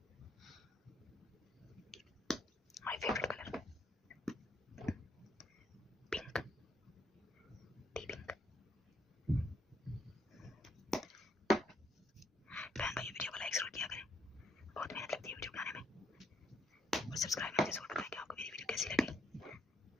my favourite colour, pink, T pink. बहन भाई वीडियो को लाइक जरूर किया करें, बहुत मेहनत लगती है वीडियो बनाने में। और सब्सक्राइब मुझे जरूर बताएं कि आपको मेरी वीडियो कैसी लगी।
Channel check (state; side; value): normal; both; correlation 0.73